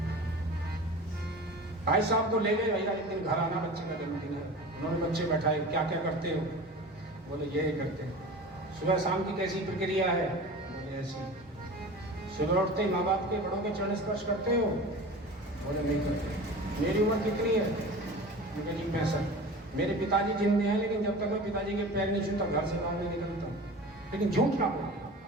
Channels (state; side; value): normal; both; correlation 0.36